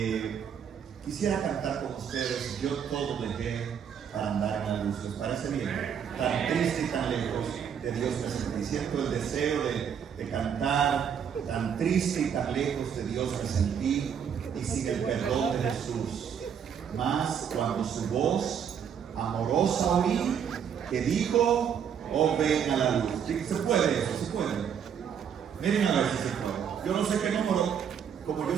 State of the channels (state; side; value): quieter; left; 7.9 dB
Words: quisiera cantar con ustedes Yo todo dejé para andar en la luz. ¿Les parece bien? Tan triste y tan lejos de Dios me sentí. Siento el deseo de cantar. Tan triste y tan lejos de Dios me sentí, y sin el perdón de Jesús. Mas cuando su voz amorosa oí, que dijo: oh, ven a la luz. ¿Sí? ¿Se puede eso? ¿Se puede? Miren a ver si se puede. Yo no sé qué número, como